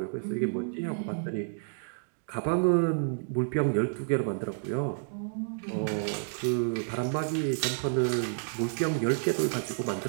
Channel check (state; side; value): silent; left; digital silence